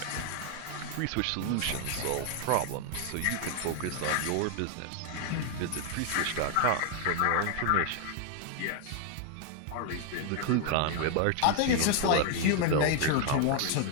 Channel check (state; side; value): different; both; correlation 0.00